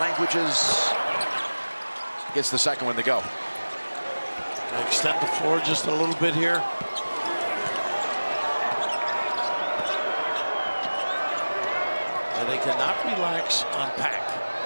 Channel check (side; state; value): both; inverted; correlation -1.00